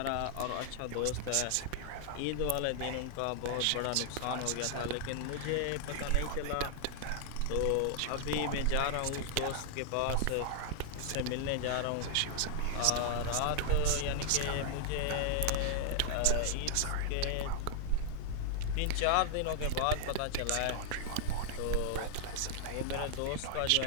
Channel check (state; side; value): different; both; correlation 0.00